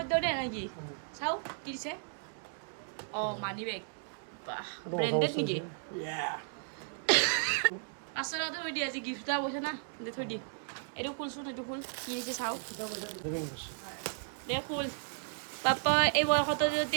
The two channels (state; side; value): silent; left; digital silence